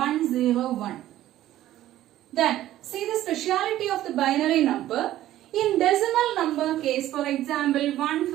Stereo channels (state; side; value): quieter; left; 13.8 dB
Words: Then see the speciality of the binary number. In decimal number case, for example